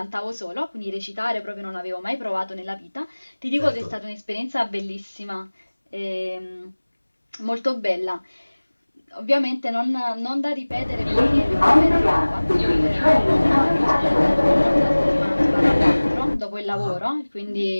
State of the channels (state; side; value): inverted; both; correlation -1.00